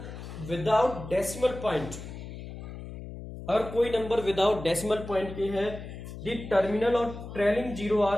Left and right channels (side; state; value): left; noise; hum, 11 dB below the sound